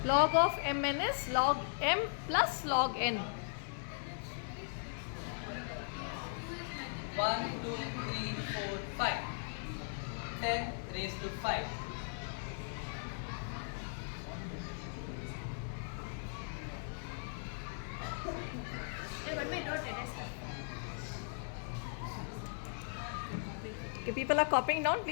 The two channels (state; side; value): silent; right; 52 dB below the other